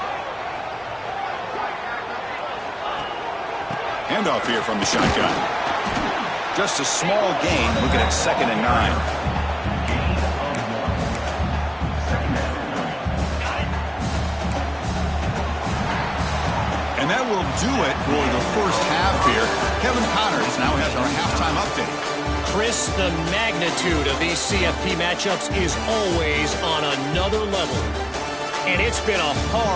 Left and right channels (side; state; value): both; identical; correlation 1.00